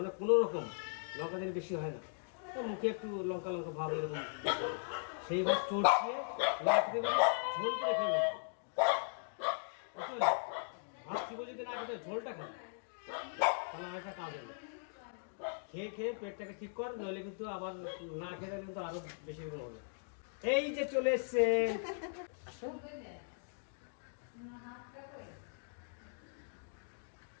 কোনো রকম লঙ্কা দিলে বেশি হয় না, তো মুখে একটু লঙ্কা লঙ্কা ভাব এরকম, সেই ভাত চড়িয়ে রাখতে দেবে, ঝোল করে খেয়ে নেবে। ভাত চিবো যদি না খেতে ঝোলটা খাবে, তাহলে একটা কাজ হবে। খেয়ে খেয়ে পেটটাকে ঠিক কর, নইলে কিন্তু আবার না খেলে কিন্তু আরো বেশি দিন হবে। এই যে চলে এসছে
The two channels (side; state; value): right; silent; digital silence